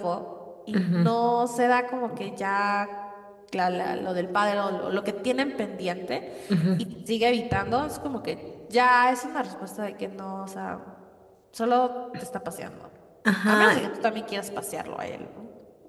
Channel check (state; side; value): identical; both; correlation 1.00